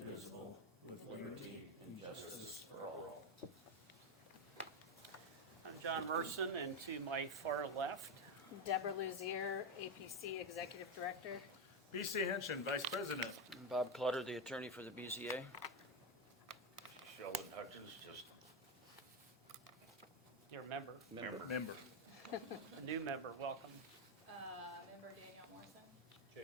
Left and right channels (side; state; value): both; normal; correlation 0.09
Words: with liberty and justice for all. I'm John Merson, and to my far left, Deborah Luzier, APC Executive Director. BC Henshin, Vice President. Bob Clutter, the attorney for the BZA. Sheldon Hutchins, just your member, Member. a new member. Welcome. Member Danielle Morrison.